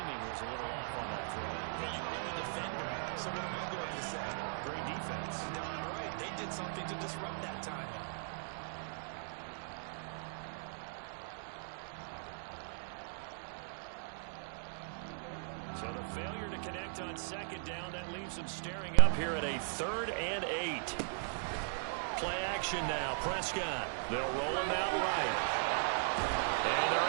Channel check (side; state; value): left; silent; digital silence